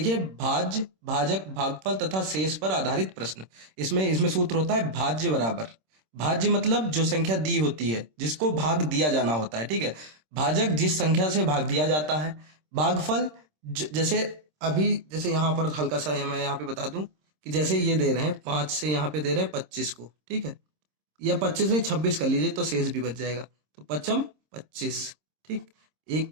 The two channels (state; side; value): late; left; 26 ms